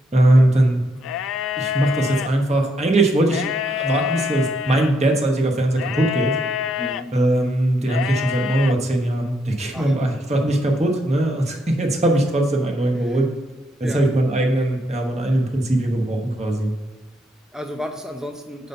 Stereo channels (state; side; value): normal; both; correlation 0.76